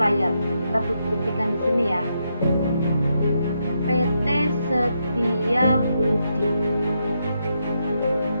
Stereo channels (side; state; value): both; inverted; correlation -0.81